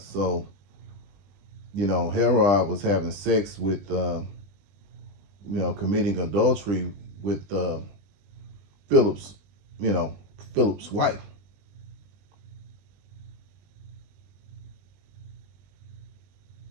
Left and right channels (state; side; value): late; left; 20 ms